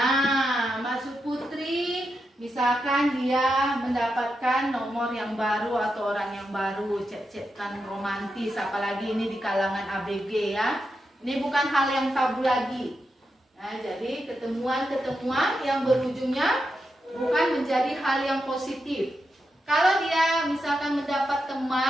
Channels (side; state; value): both; normal; correlation 0.86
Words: masuk Putri, misalkan dia mendapatkan nomor yang baru atau orang yang baru, chat-chatan romantis, apalagi ini di kalangan ABG ya. Ini bukan hal yang tabu lagi. Nah, jadi ketemuan-ketemuan yang berujungnya bukan menjadi hal yang positif. Kalau dia misalkan mendapat